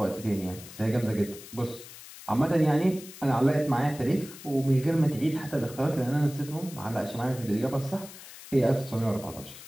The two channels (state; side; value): noise; left; hiss, 16 dB below the sound